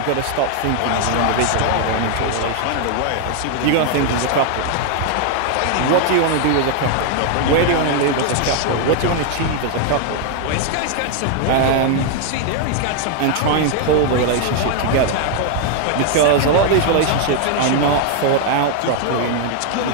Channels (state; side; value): different; both; correlation 0.00